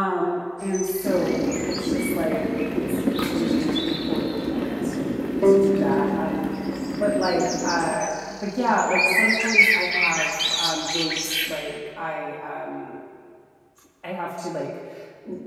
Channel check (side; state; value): both; identical; correlation 1.00